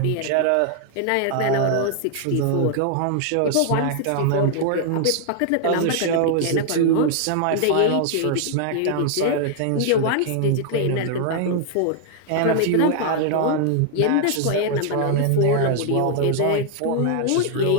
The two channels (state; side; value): different; both; correlation 0.00